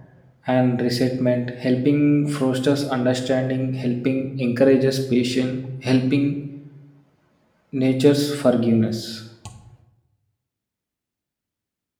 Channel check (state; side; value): identical; both; correlation 1.00